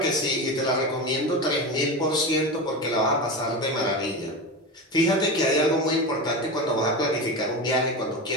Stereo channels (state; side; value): normal; both; correlation 0.22